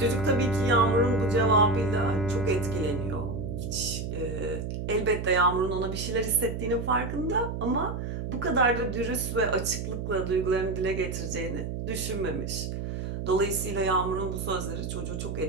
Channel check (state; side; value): noise; right; hum, 5 dB below the sound